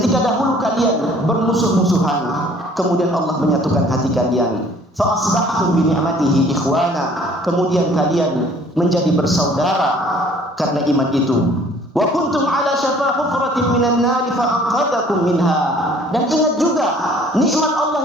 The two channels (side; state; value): both; normal; correlation 0.55